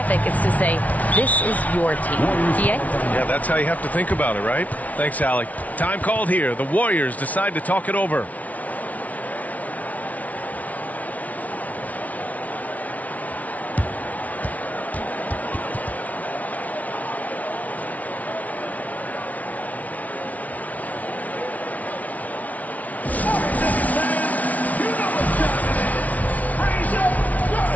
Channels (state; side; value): late; right; 0.071 ms